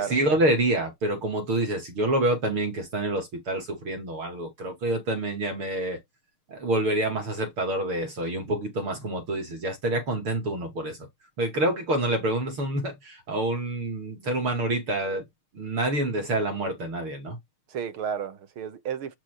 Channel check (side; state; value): left; late; 6.5 ms